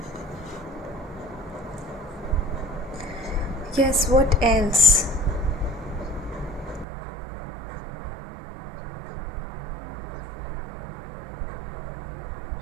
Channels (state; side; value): drops out; left; at 6.9 s